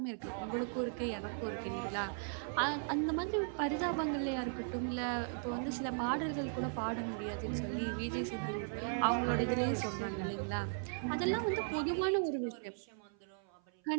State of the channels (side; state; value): left; silent; 53 dB below the other